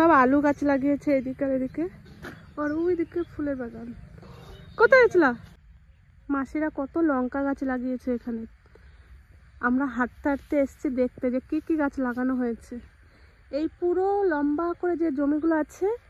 আলু গাছ লাগিয়েছে এদিকে আর এদিকে, আর ওইদিকে ফুলের বাগান। কোথায় গেছিলা? মাসিরা কত লঙ্কা গাছ লাগিয়েছে এখানে। আমরা হাঁটতে হাঁটতে এসছি দেখতে যে কি কি গাছ লাগানো হয়েছে। এই পুরো লম্বা করে যে জমিগুলো আছে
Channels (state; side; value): identical; both; correlation 1.00